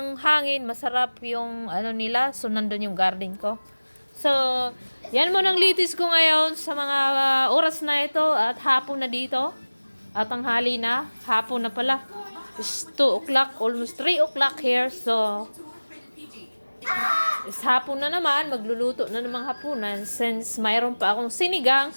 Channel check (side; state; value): both; inverted; correlation -1.00